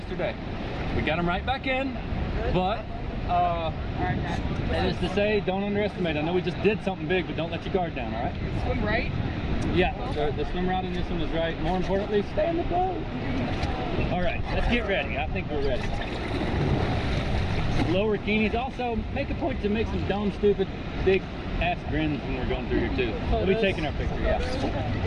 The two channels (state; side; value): identical; both; correlation 1.00